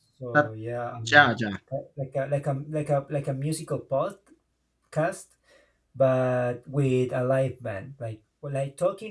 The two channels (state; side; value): identical; both; correlation 1.00